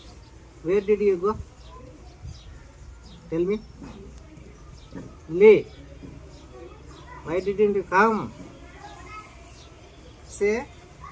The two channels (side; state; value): both; identical; correlation 1.00